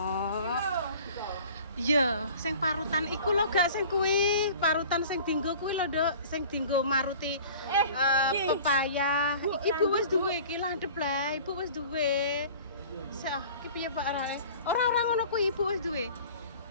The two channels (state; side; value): inverted; both; correlation -0.45